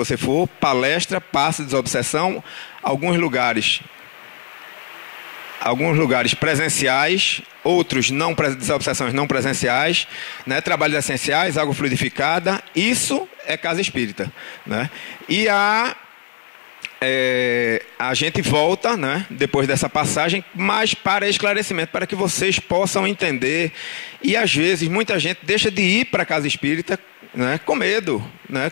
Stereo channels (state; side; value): silent; right; digital silence